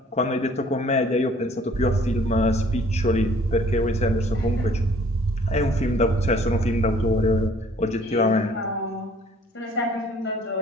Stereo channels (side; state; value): both; normal; correlation 0.56